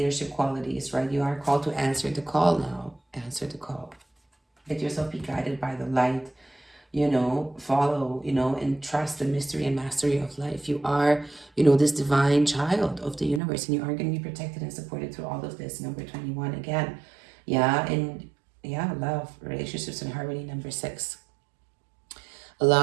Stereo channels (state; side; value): drops out; left; at 13.4 s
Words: qualities, right? You are called to answer the call now. Answer the call. Let yourself be guided by the light. You know, follow, you know, and trust the mystery and mastery of life. You are, you know, this divine child of the universe, and you are going to be protected and supported through all of this. Number 21 again. Yeah, and yeah, love, relationships, and harmony. Number 6.